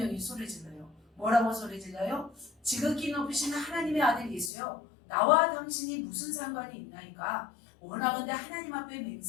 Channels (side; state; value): right; drops out; at 4.5 s